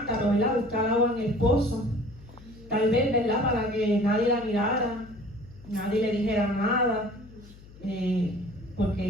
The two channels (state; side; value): noise; left; hum, 21 dB below the sound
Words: ¿verdad? Buscar agua en el pozo. Tal vez, ¿verdad? Para que nadie la mirara, nadie le dijera nada,